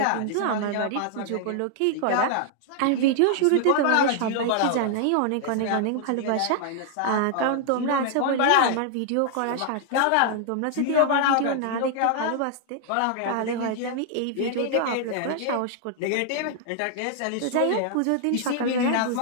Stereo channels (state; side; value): different; both; correlation 0.00